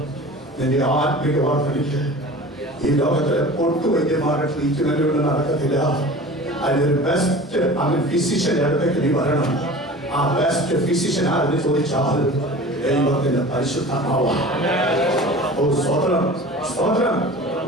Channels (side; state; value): both; normal; correlation 0.39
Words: നിന്റെ ആത്മിക വർദ്ധനയ്ക്ക് ഈ ലോകത്തിലെ പൊട്ടുവൈദ്യന്മാരുടെ ട്രീറ്റ്മെന്റുകൾ നടക്കത്തില്ല. അതിനൊരു ബെസ്റ്റ് ഫിസിഷ്യന്റെ അടുത്തേക്ക് നീ വരണം. ആ ബെസ്റ്റ് ഫിസിഷ്യൻ ആരെന്ന് ചോദിച്ചാൽ ദൈവത്തിന്റെ പരിശുദ്ധാത്മാവാണ്. ഓ സ്തോത്രം സ്തോത്രം.